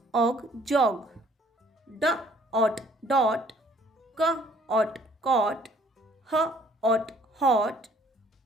og jog. D ot dot. C ot cot. H ot hot,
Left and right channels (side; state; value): both; normal; correlation 0.60